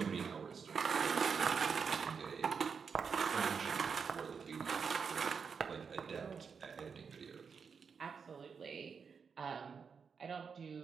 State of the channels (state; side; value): quieter; left; 6.0 dB